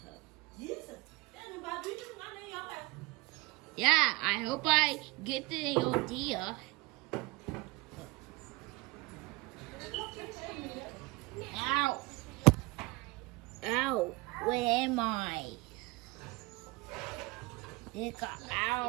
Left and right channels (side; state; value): left; quieter; 23.1 dB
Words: Jesus. Daddy, why do you think I know your way? Yeah, I hope I get the idea. Ow. Ow. Where am I?